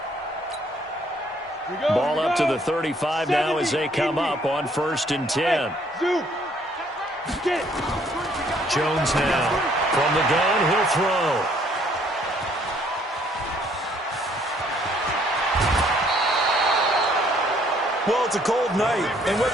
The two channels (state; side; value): normal; both; correlation 0.64